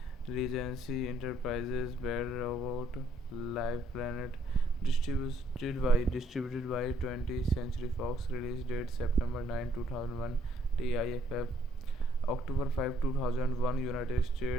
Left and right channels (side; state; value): both; normal; correlation 0.68